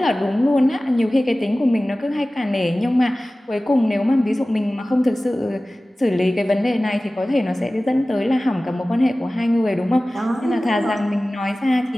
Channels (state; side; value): normal; both; correlation 0.97